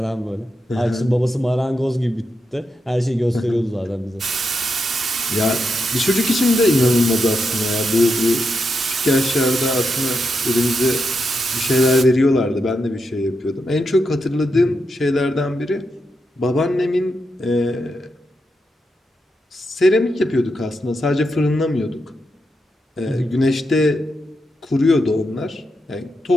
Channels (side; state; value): both; normal; correlation 0.85